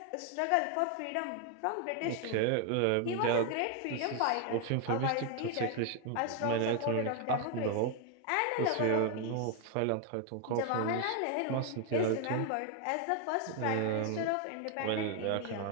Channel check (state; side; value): different; both; correlation 0.01